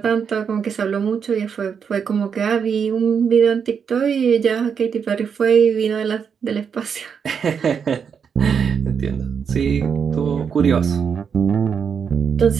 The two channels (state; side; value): quieter; left; 6.8 dB